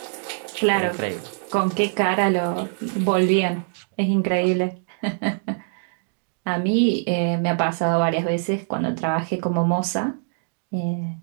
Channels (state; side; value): silent; left; digital silence